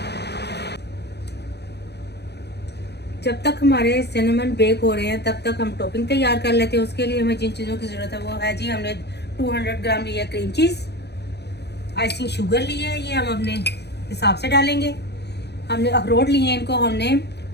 जब तक हमारे सिनेमन बेक हो रहे हैं तब तक हम टॉपिंग तैयार कर लेते हैं। उसके लिए हमें जिन चीज़ों की ज़रूरत है वो है जी, हमने 200 ग्राम लिया क्रीम चीज़, आइसिंग शुगर ली है, ये हम अपने हिसाब से डालेंगे। हमने अखरोट लिए हैं, इनको हमने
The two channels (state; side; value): late; right; 0.49 ms